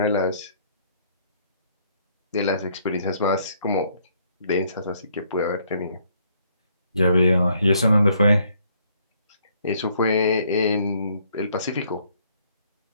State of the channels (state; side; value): inverted; both; correlation -0.67